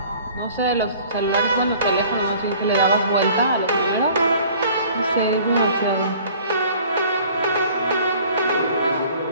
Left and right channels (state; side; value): inverted; both; correlation -0.51